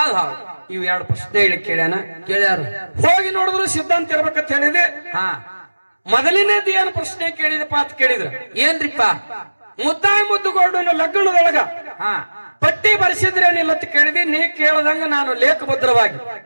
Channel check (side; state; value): both; inverted; correlation -1.00